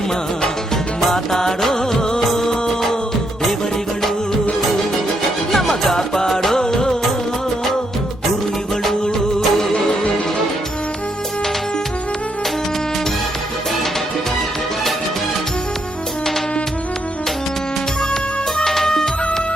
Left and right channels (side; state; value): both; normal; correlation 0.77